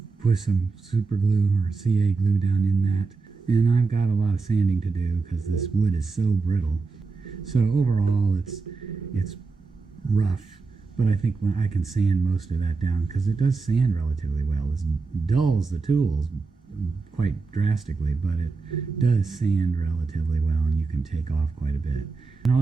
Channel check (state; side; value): quieter; left; 4.2 dB